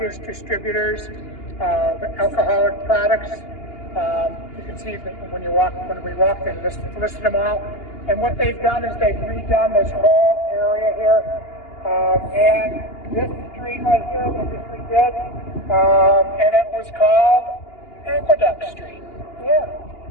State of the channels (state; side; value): late; right; 2.8 ms